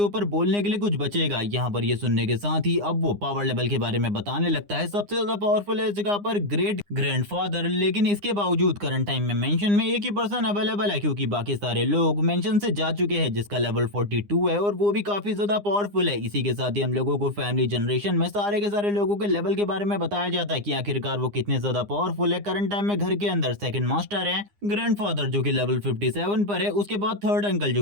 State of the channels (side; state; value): left; late; 9.8 ms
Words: बोलने के लिए कुछ बचेगा। यहाँ पर ये सुनने के साथ ही अब वो पावर लेवल के बारे में बताने लगता है। सबसे ज्यादा पावरफुल है इस जगह पर ग्रेट ग्रैंडफादर, लेकिन इसके बावजूद करंट टाइम में मेंशन में एक ही पर्सन अवेलेबल है, क्योंकि बाकी सारे लोग मेंशन से जा चुके हैं, जिसका लेवल 42 है और वो भी काफी ज्यादा पावरफुल है। इसी के साथ ही हम लोगों को फैमिली जनरेशन में सारे के सारे लोगों के लेवल के बारे में बताया जाता है कि आखिरकार वो कितने ज्यादा पावरफुल है। करंट टाइम में घर के अंदर सेकंड मास्टर है ग्रैंडफादर जो कि लेवल 57 पर है, उसके बाद थर्ड अंकल